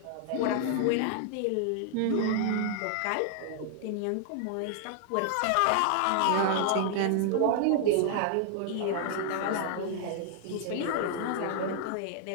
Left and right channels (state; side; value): different; both; correlation 0.00